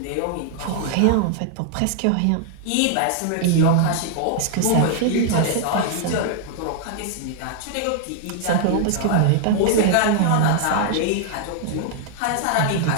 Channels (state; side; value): different; both; correlation 0.00